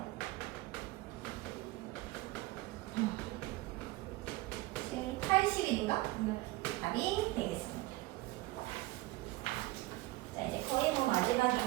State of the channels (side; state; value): left; quieter; 19.4 dB